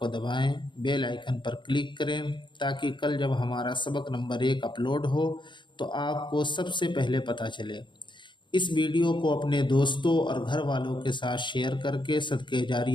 دبائیں، بیل آئیکن پر کلک کریں تاکہ کل جب ہمارا سبق نمبر 1 اپلوڈ ہو تو آپ کو سب سے پہلے پتہ چلے۔ اس ویڈیو کو اپنے دوستوں اور گھر والوں کے ساتھ شیئر کر کے صدقہ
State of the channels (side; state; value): right; late; 0.23 ms